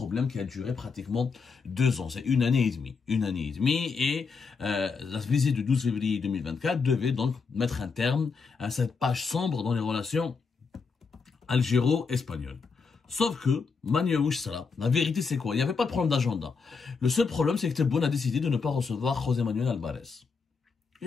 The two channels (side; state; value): right; quieter; 5.0 dB